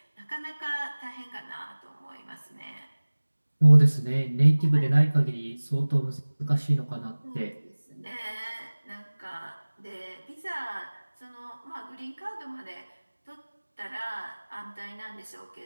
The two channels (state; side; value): inverted; both; correlation -1.00